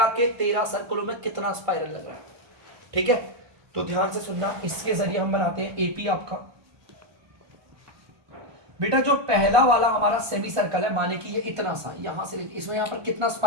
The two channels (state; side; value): late; left; 1.2 ms